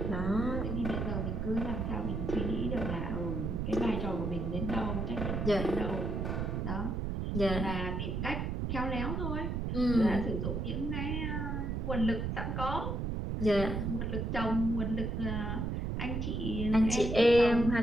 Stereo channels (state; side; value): noise; right; rumble, 1 dB below the sound